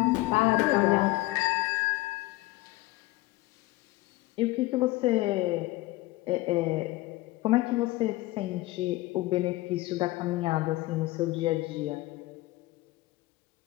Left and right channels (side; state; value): right; quieter; 19.4 dB